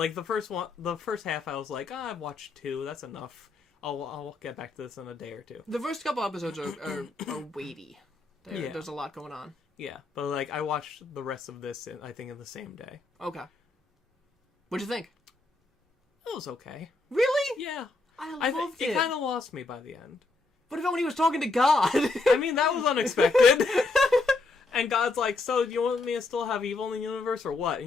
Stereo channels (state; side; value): quieter; right; 3.5 dB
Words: first half, I was like, I've watched 2. That's enough. I'll get back to this in a day or 2. The first couple episodes are weighty. There's a lot going on. Yeah, but like I watched the rest of this, I think, in the same day. Okay. What'd you think? It was okay. Really? Yeah. I loved it. It kind of lost me by the end. What about when he was talking to God? I mean, that was unexpected. And God's like, so do you want me to still have evil in the universe or what? And